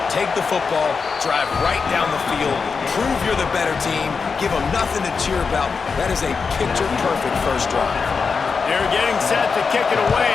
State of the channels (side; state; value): right; quieter; 5.2 dB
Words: Take the football, drive right down the field, prove you're the better team, give them nothing to cheer about. That is a picture-perfect first drive. They're getting set to kick it away,